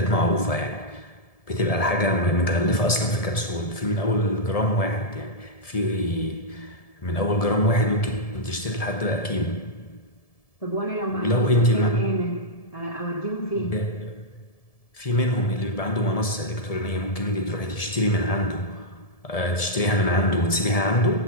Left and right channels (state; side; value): late; right; 1.7 ms